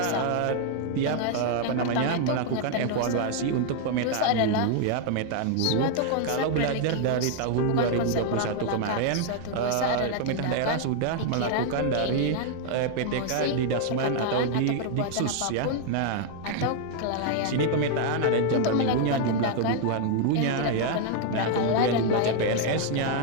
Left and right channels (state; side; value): different; both; correlation 0.00